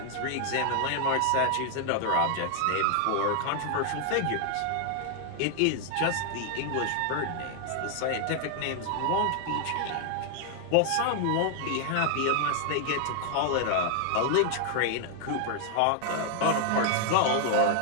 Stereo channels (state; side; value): different; both; correlation 0.00